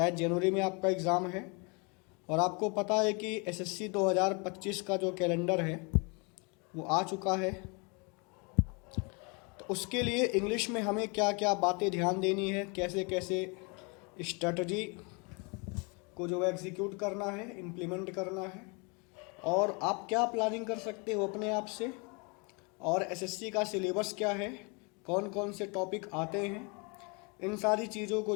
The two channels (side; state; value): right; quieter; 31.8 dB